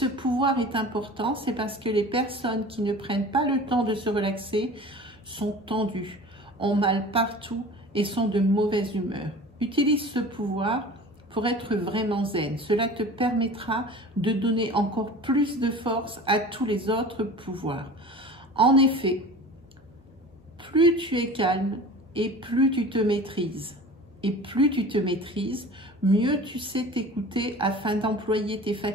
pouvoir est important, c'est parce que les personnes qui ne prennent pas le temps de se relaxer sont tendues, ont mal partout et sont de mauvaise humeur. Utilise ce pouvoir pour être vraiment zen. Cela te permettra de donner encore plus de force à tous les autres pouvoirs. En effet, plus tu es calme et plus tu te maîtrises. Et plus tu te maîtrises, mieux tu sais t'écouter afin d'employer tes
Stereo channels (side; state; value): both; normal; correlation 0.39